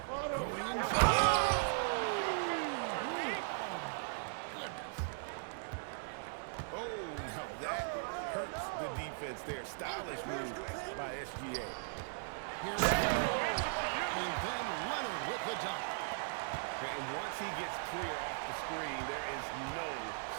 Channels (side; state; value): left; silent; digital silence